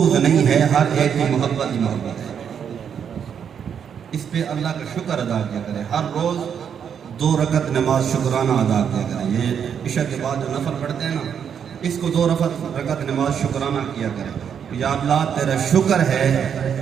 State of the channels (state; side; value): quieter; left; 7.8 dB